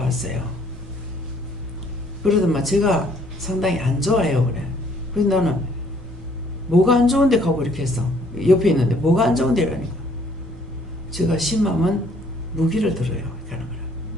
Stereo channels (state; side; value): normal; both; correlation 0.62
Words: 그러더만 제가 상당히 안 좋아요 그래. 그래서 나는 뭐가 안 좋은데 가고 이렇게 했어. 옆에 있는데 뭐가 안 좋은데 이러니까 제가 심하면 무기를 들어요 이렇게 하는 거라.